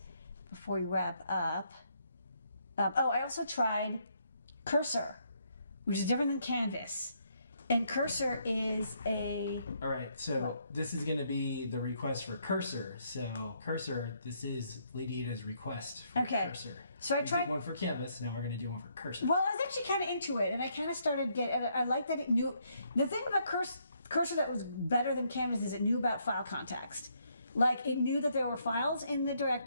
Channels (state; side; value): inverted; both; correlation -0.72